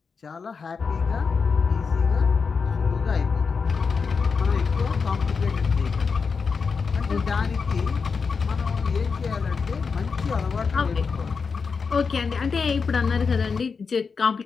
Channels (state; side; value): quieter; right; 5.3 dB